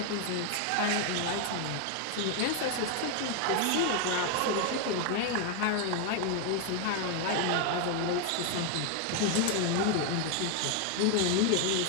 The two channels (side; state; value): both; different; correlation 0.01